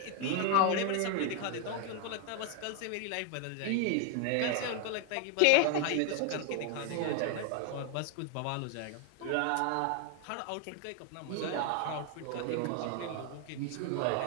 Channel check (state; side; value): different; both; correlation 0.01